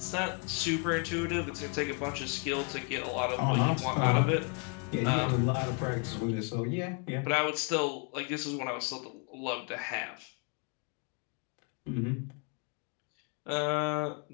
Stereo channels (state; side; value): quieter; right; 35.9 dB